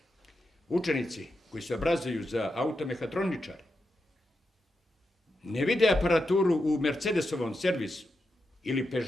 učenici koji se obrazuju za automehatroničare ne vide aparaturu u Mercedesovom servisu, ili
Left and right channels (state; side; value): normal; both; correlation 0.87